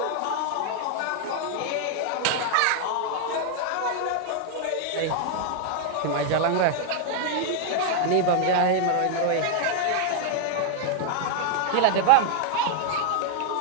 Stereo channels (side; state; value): both; different; correlation 0.00